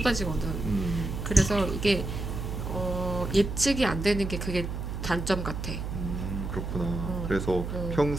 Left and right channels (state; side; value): noise; right; hum, 5 dB below the sound